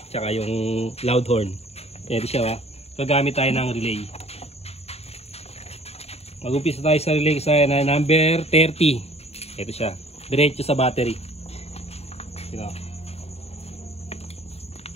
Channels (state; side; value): late; right; 0.30 ms